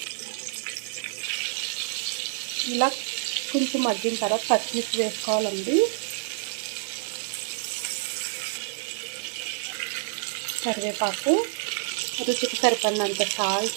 ఇలా కొంచెం మగ్గిన తర్వాత పచ్చిమిర్చి వేసుకోవాలండి. కరివేపాకు, రుచికి సరిపడినంత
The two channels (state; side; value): silent; left; 60 dB below the other